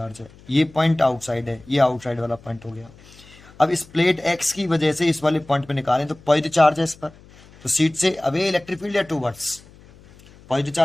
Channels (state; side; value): noise; left; hum, 24 dB below the sound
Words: है, ये पॉइंट आउटसाइड है, ये आउटसाइड वाला पॉइंट हो गया। अब इस प्लेट एक्स की वजह से इस वाले पॉइंट पे निकालें तो पॉजिटिव चार्ज है इस पर, तो सीट से अवे इलेक्ट्रिक फील्ड या टूवर्ड्स, पॉजिटिव